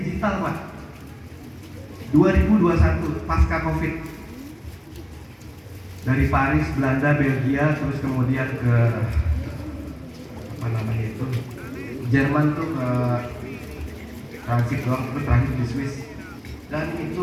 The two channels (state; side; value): identical; both; correlation 1.00